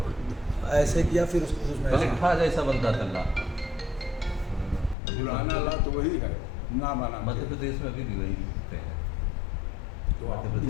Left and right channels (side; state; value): right; drops out; at 5.0 s